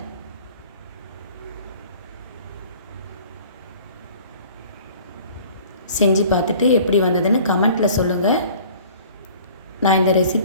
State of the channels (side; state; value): both; inverted; correlation -0.49